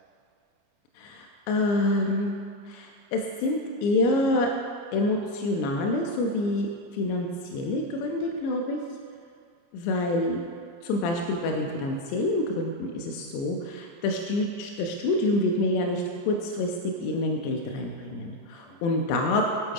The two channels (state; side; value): late; right; 29 ms